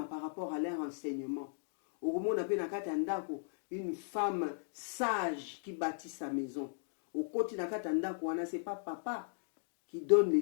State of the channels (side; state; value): right; silent; digital silence